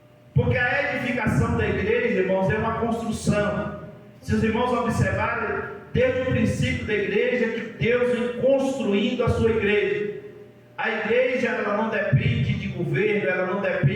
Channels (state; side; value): identical; both; correlation 1.00